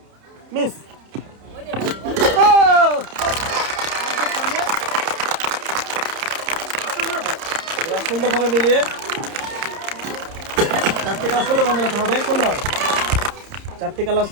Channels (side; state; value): left; late; 30 ms